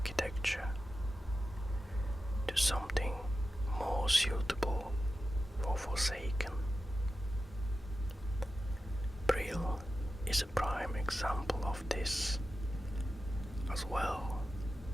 to something more suitable for Forsaken. Brill is a prime example of this, as well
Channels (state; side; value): normal; both; correlation 0.92